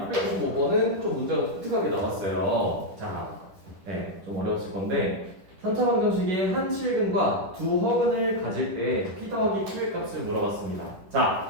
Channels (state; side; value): late; left; 10 ms